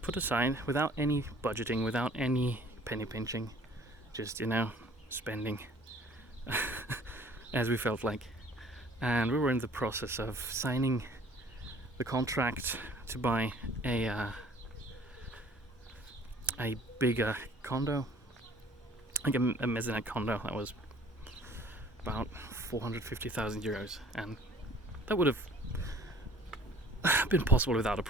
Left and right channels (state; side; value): normal; both; correlation 0.53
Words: put aside without any budgeting, without any penny pinching, just spending as we felt like. And we were in the process of signing the contract to buy a bigger condo, like a mezzanine condo that was about 450,000 euros, and that would have been possible without a